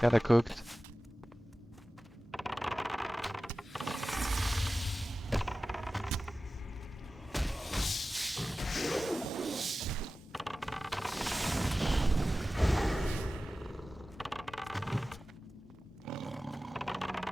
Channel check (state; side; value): normal; both; correlation 0.96